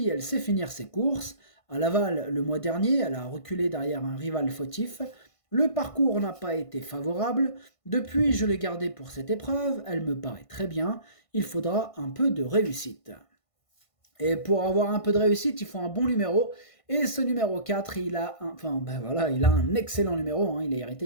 elle sait finir ses courses. À Laval, le mois dernier, elle a reculé derrière un rival fautif. Le parcours n'a pas été favorable. Depuis, je l'ai gardée pour cette épreuve, elle me paraît très bien. Il faudra un peu de réussite. Et pour avoir un peu de réussite, il faut un bon numéro. Et ce numéro 4, il a un excellent numéro. Il a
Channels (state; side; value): late; right; 1.5 ms